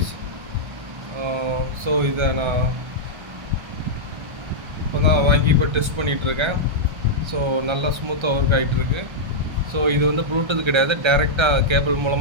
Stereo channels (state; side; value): late; left; 1.4 ms